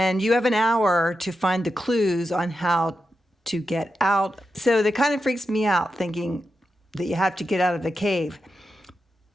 you have an hour to find the clues on how to get out. So that kind of freaks me out, thinking that you have to get out of the cave.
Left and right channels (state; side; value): normal; both; correlation 0.89